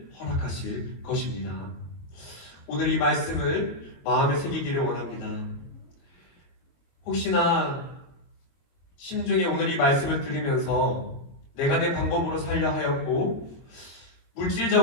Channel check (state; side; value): late; right; 22 ms